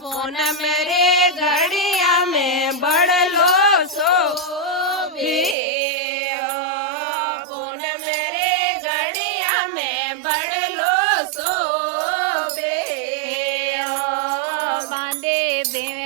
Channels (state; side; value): drops out; left; at 5.6 s